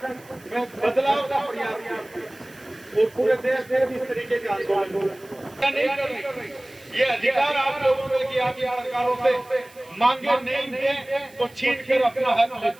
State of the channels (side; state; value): right; noise; hiss, 26 dB below the sound